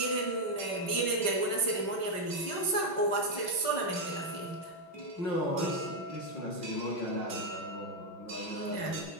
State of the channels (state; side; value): late; right; 5.3 ms